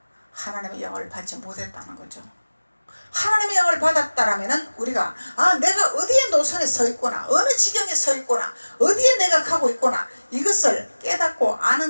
하나님의 영을 받지 못했다는 거죠. 하나님의 영을 받았다라면은 우리가 내가 어디에 노선에 서 있구나, 어느 지경에 서 있구나, 어디에 내가 가고 있구나, 이것을 깨닫고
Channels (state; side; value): inverted; both; correlation -1.00